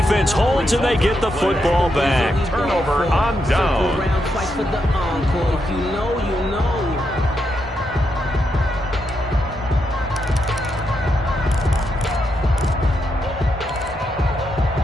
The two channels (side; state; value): both; normal; correlation 0.82